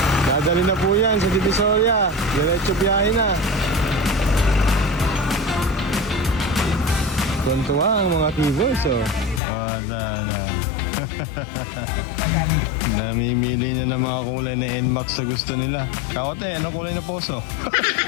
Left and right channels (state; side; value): drops out; right; at 9.4 s